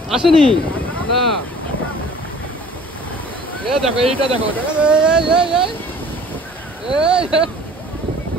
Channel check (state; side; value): normal; both; correlation 0.49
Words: আসেনি না। দেখো এইটা দেখো,